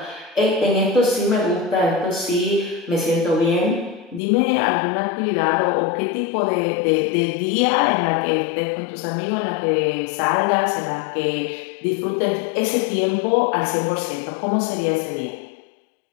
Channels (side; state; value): right; drops out; at 4.2 s